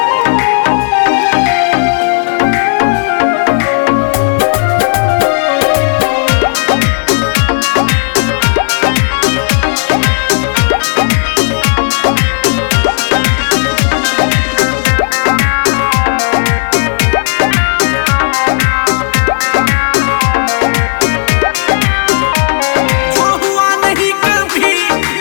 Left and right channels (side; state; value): right; silent; 68 dB below the other